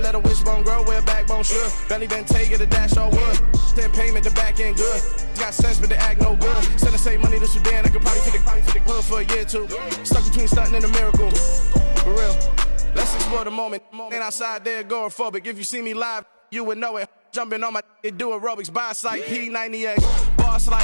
a wishbone grow where a backbone should. Belly been taking the dash all wood. 10 payment, the back end good. Got sense, but they act no good. Send the same money to Sudan. I could probably take the hood for a year or two. Stuck between stunting and a miracle. For real. Let's explore the moment. Ain't outside there agoraphobic. If you see me live, you would know it. Jumping on my do aerobics. Boss like P90X. Boss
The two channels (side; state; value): both; inverted; correlation -1.00